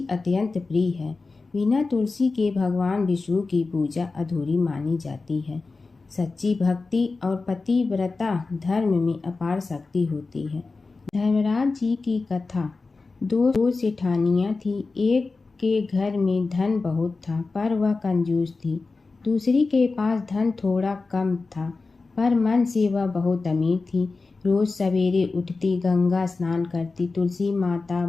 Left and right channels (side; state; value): right; quieter; 3.9 dB